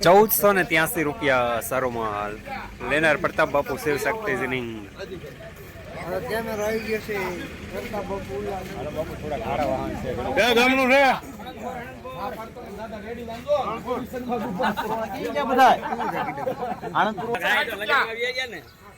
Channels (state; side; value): identical; both; correlation 1.00